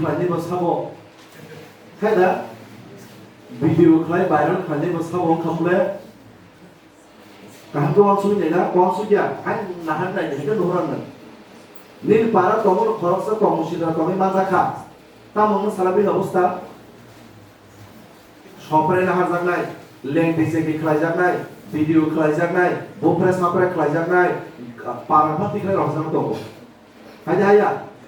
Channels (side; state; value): both; identical; correlation 1.00